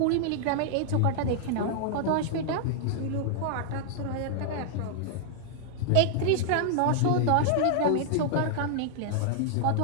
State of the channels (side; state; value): both; different; correlation -0.01